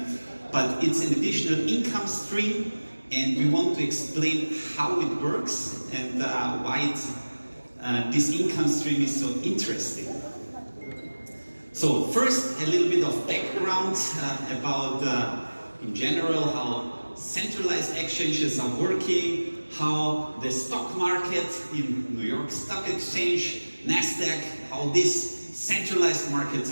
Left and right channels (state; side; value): inverted; both; correlation -1.00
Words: but it's an additional income stream, and we want to explain how it works and why this income stream is so interesting. So first, a little bit of background about, in general, how centralized exchanges are working, how the stock market in New York Stock Exchange, NASDAQ, how these centralized markets